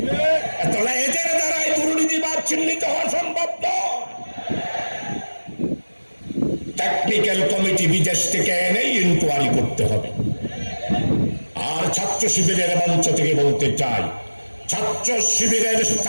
তাহলে এদের দ্বারাই দুর্নীতিবাদ চিহ্নিত হওয়া সম্ভব নয়। টেকনিক্যাল কমিটি বিদেশ থেকে এনে ইনকোয়ারি করতে হবে। আর ছাত্র শিবিরের মঞ্চ থেকে বলতে চাই, ছাত্র শিবিরের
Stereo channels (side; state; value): both; inverted; correlation -1.00